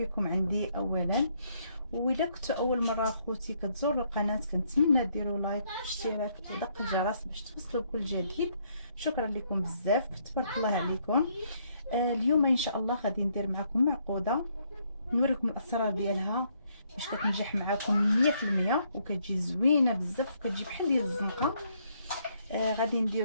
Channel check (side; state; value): both; inverted; correlation -0.71